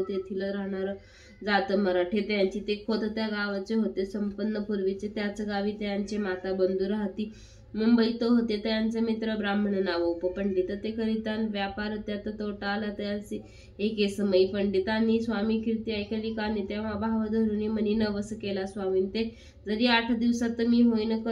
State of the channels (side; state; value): both; identical; correlation 1.00